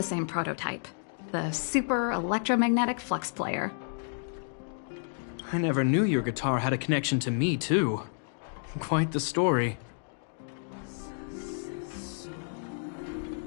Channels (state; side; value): silent; right; digital silence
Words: same prototype. The Super Electromagnetic Flux Player. I never knew your guitar had a connection to me, too. Quite the story.